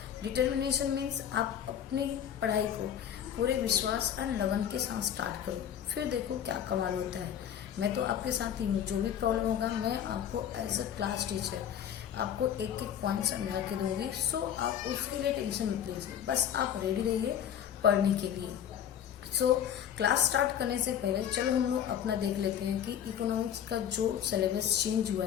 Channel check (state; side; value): quieter; right; 9.5 dB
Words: डिटर्मिनेशन मीन्स आप अपनी पढ़ाई को पूरे विश्वास एंड लगन के साथ स्टार्ट करो, फिर देखो क्या कमाल होता है। मैं तो आपके साथ ही हूँ, जो भी प्रॉब्लम होगा मैं आपको एज अ क्लास टीचर आपको एक एक पॉइंट समझा के दूंगी। सो आप उसके लिए टेंशन मत लीजिए, बस आप रेडी रहिए पढ़ने के लिए। सो क्लास स्टार्ट करने से पहले चलो हम लोग अपना देख लेते हैं कि इकोनॉमिक्स का जो सिलेबस चेंज हुआ